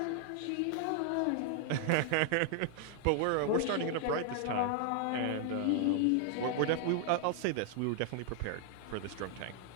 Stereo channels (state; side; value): different; both; correlation 0.00